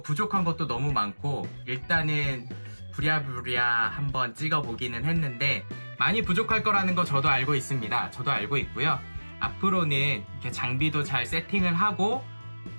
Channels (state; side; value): inverted; both; correlation -1.00